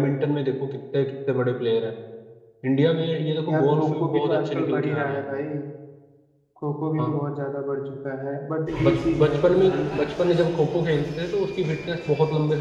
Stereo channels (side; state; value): both; identical; correlation 1.00